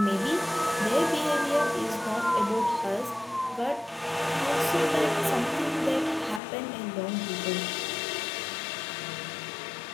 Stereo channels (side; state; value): right; drops out; at 6.4 s